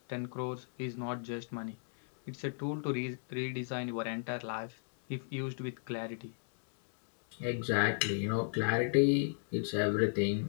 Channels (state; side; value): silent; right; digital silence